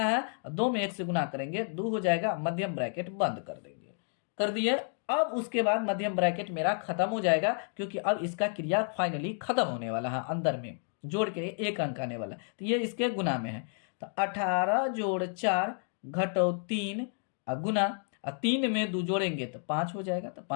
2 में 1 से गुना करेंगे, 2 हो जाएगा, मध्यम ब्रैकेट बंद कर देंगे। कर दिए। अब उसके बाद मध्यम ब्रैकेट मेरा खत्म हो जाएगा, क्योंकि अब इसका क्रिया फाइनली खत्म होने वाला है, अंदर में जोड़ के 1 अंक आने वाला, तो ये इसके गुना में है। तो 18 जोड़ 4 घटो 3 गुना, 3 में 2 जोड़ेंगे तो 5 हो जाएगा, तो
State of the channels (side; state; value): right; silent; 55 dB below the other